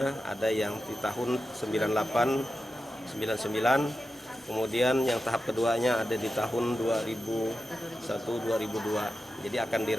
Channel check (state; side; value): normal; both; correlation 0.91